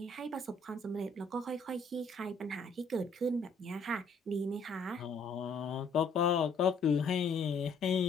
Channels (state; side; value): quieter; right; 3.6 dB